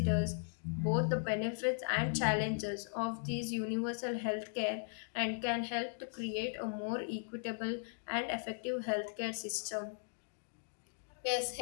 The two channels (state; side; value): silent; right; digital silence